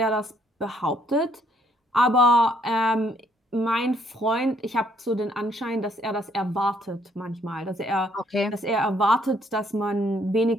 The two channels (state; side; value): normal; both; correlation 0.67